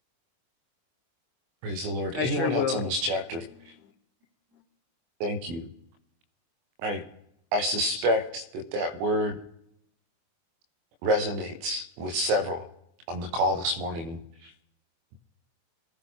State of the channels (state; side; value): late; left; 24 ms